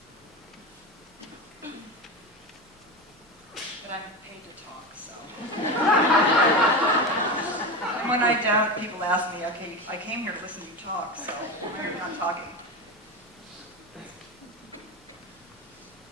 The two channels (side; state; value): both; normal; correlation 0.22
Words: But I'm paid to talk, so. And when I don't, people ask me, okay, I came here to listen to you talk, so why are you not talking?